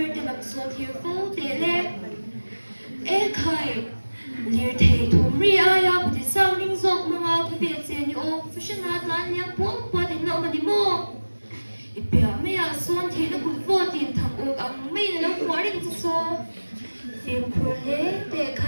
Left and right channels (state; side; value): inverted; both; correlation -1.00